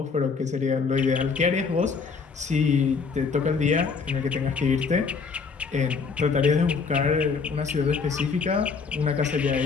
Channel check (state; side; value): quieter; right; 5.0 dB